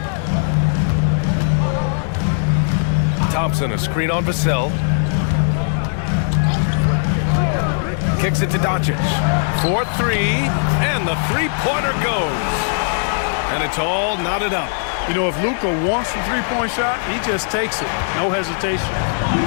Thompson, a screen on Vassell. Kicks it to Doncic. 4-3, and the three-pointer goes. And it's all knotted up. You know, if Luka wants the three-point shot, he just takes it. No hesitation.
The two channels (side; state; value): right; silent; digital silence